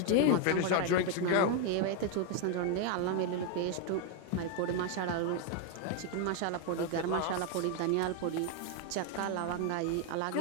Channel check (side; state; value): both; different; correlation 0.01